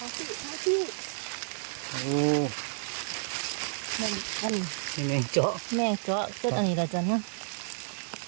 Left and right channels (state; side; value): silent; left; 57 dB below the other